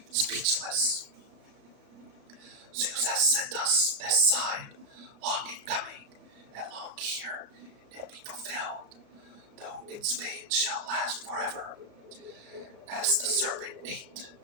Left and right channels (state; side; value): late; left; 34 ms